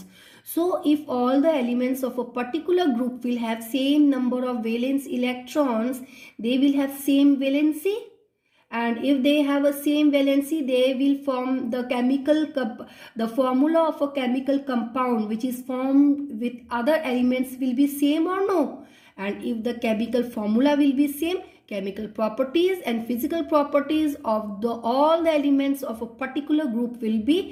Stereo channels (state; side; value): identical; both; correlation 1.00